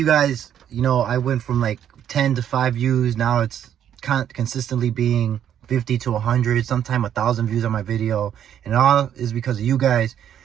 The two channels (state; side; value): quieter; left; 9.8 dB